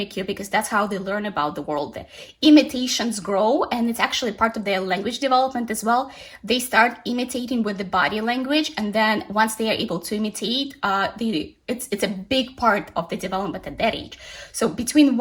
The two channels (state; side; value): identical; both; correlation 1.00